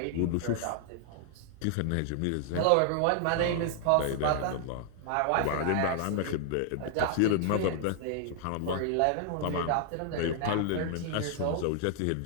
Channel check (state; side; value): different; both; correlation -0.01